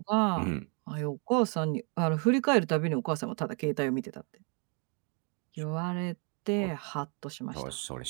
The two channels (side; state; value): left; quieter; 36.3 dB